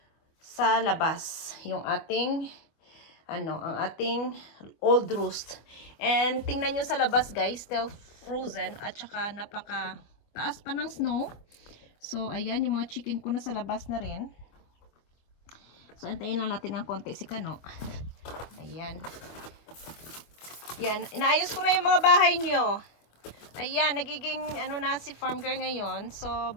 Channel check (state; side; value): late; right; 25 ms